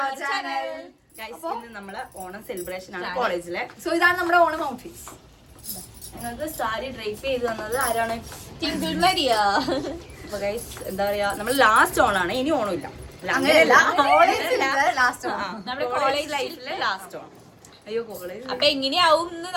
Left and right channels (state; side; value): identical; both; correlation 1.00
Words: our channel. Guys, ഇന്ന് നമ്മളെ Onam celebration ആണ് കോളേജിലെ. സോ ഇതാണ് നമ്മുടെ ഓണം ഔട്ട്ഫിറ്റ്സ്. ഞങ്ങൾക്ക് സാരി ഡ്രൈപ്പ് ചെയ്ത് തന്നത് ആരാണ്? Twinkle Maria. അപ്പൊ ഗൈസ്, എന്താ പറയാ, നമ്മൾ ലാസ്റ്റ് ഓണാണ്, ഇനി ഓണമില്ല. അങ്ങനെയല്ല, ലാസ്റ്റ് നമ്മുടെ കോളേജ് ലൈഫിലെ ലാസ്റ്റ് ഓണം. അയ്യോ, കോളേജ് അപ്പൊ എങ്ങനെയാവും എന്ന്